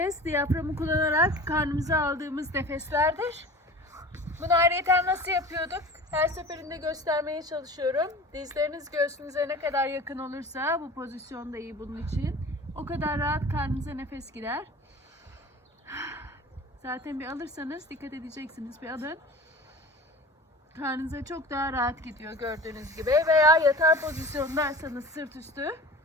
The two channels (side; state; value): both; normal; correlation 0.38